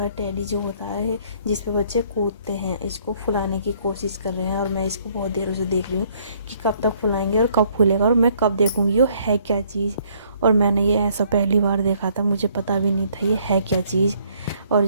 टेडी जो होता है जिस पे बच्चे कूदते हैं, इसको फुलाने की कोशिश कर रहे हैं। और मैं इसको बहुत देर से देख रही हूँ कि कब तक फुलाएंगे और कब फूलेगा और मैं कब देखूँगी ये है क्या चीज़। और मैंने ये ऐसा पहली बार देखा था, मुझे पता भी नहीं था ये है क्या चीज़। और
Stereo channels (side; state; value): both; inverted; correlation -0.64